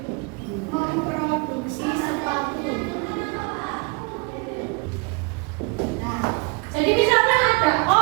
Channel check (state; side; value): quieter; left; 31.4 dB